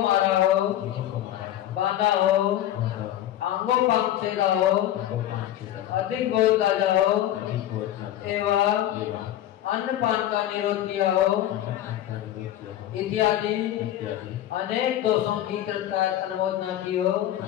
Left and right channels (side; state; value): right; quieter; 12.5 dB